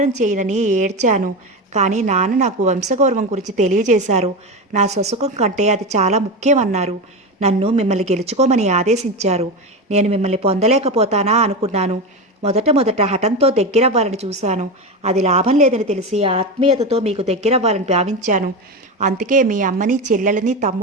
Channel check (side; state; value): both; normal; correlation 0.19